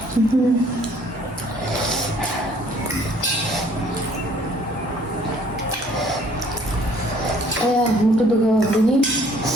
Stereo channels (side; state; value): both; normal; correlation 0.59